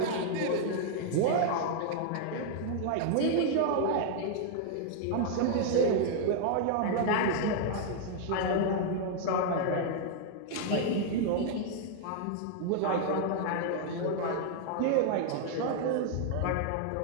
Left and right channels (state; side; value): different; both; correlation -0.01